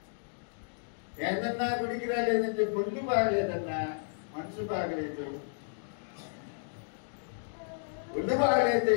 ఏందన్నా గుడికి రాలేదంటే ఒళ్ళు బాగలేదన్నా, మనసు బాగలేదు. ఒళ్ళు బాగలేదు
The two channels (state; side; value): silent; right; digital silence